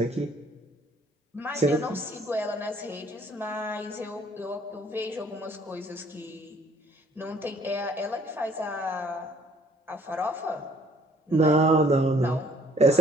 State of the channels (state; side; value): normal; both; correlation 0.60